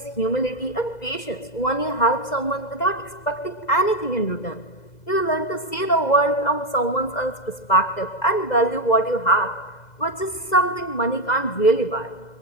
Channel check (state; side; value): late; right; 2.0 ms